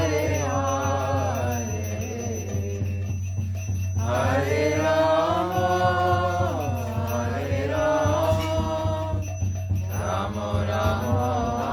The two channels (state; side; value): identical; both; correlation 1.00